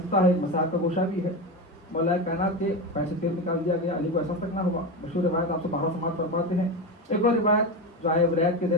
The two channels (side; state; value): both; normal; correlation 0.19